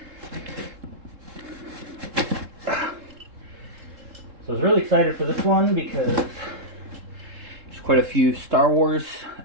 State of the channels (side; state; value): left; late; 3.7 ms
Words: So I was really excited for this one because there's quite a few Star